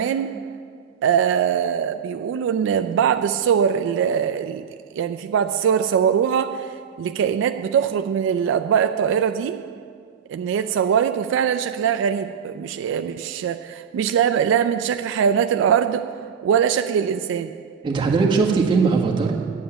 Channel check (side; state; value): left; quieter; 7.1 dB